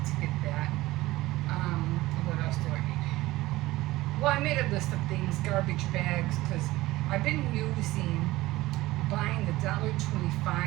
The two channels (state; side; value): quieter; left; 18.1 dB